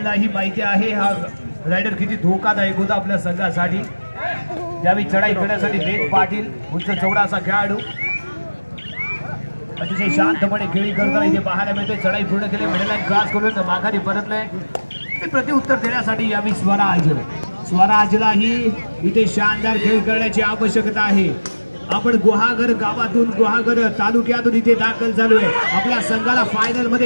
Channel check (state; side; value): inverted; both; correlation -1.00